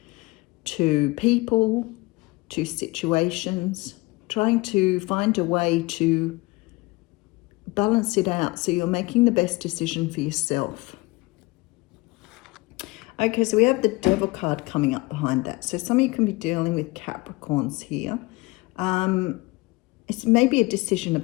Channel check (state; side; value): quieter; right; 22.8 dB